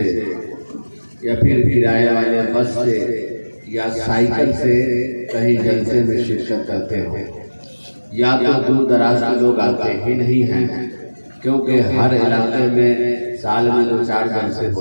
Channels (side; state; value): both; inverted; correlation -1.00